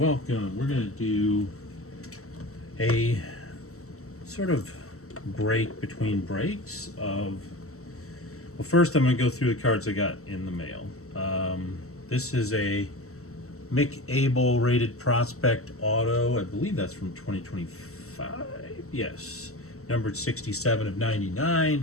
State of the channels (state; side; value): late; right; 0.64 ms